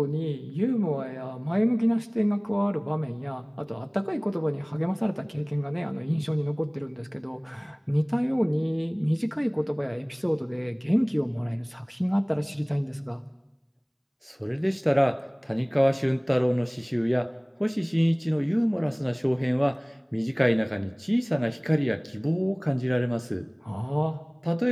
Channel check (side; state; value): both; identical; correlation 1.00